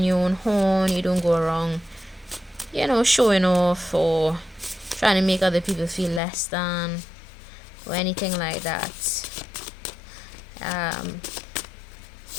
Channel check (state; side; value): drops out; right; at 6.2 s